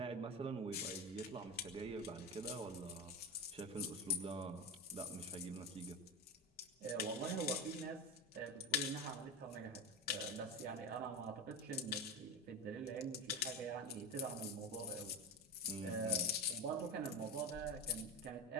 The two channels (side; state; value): both; normal; correlation 0.19